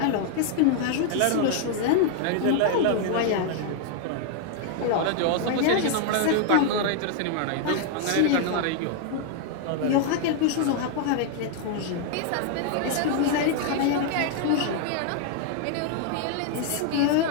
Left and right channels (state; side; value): different; both; correlation 0.00